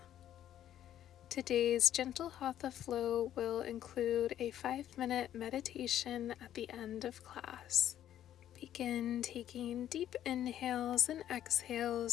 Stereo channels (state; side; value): quieter; right; 11.3 dB